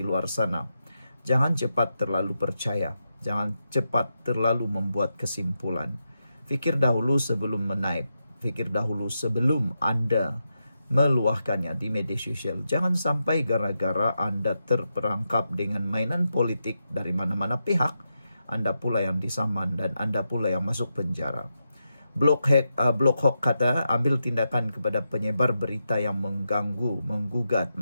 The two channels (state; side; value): inverted; both; correlation -0.87